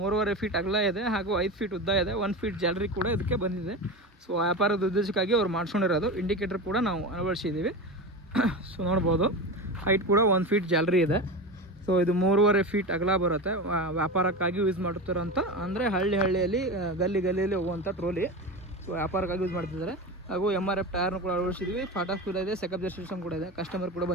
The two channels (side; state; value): both; normal; correlation 0.24